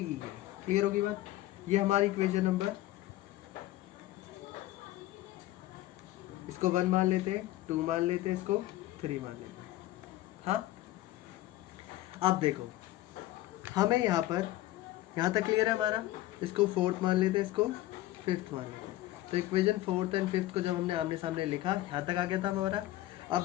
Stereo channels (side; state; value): right; quieter; 15.8 dB